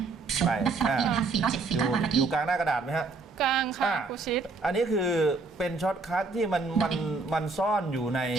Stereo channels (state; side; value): quieter; left; 4.0 dB